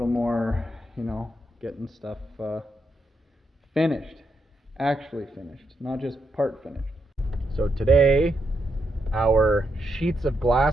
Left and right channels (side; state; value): both; normal; correlation 0.81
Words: more, you know, getting stuff finished. Actually finished, not just part finished. So today, our sheets of